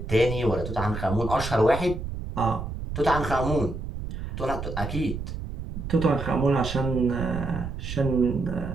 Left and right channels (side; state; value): right; noise; rumble, 6 dB below the sound